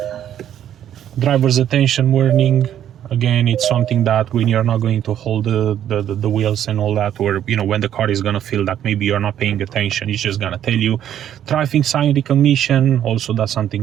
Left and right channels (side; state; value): left; quieter; 10.5 dB